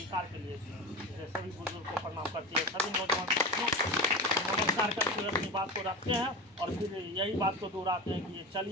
के लिए दिए हैं। इसलिए सभी बुजुर्ग को प्रणाम करते हैं, सभी नौजवान साथियों नमस्कार करते हुए अपनी बात को रखते हैं और फिर यही बात को दोहराते हैं कि ये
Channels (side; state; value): both; normal; correlation 0.25